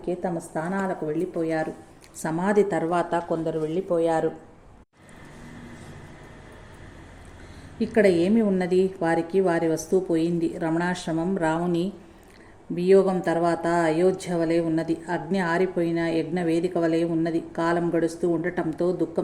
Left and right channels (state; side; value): identical; both; correlation 1.00